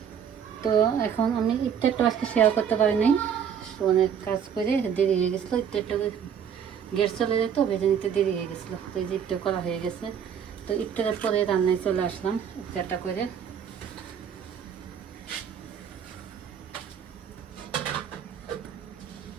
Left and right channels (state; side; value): quieter; left; 8.0 dB